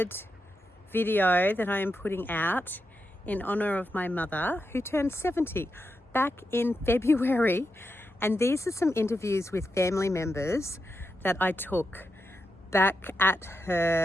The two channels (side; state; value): both; normal; correlation 0.86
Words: video that I am putting out in honour of my mother who turned 70 back in February, and these are some interviews with family members that I took back at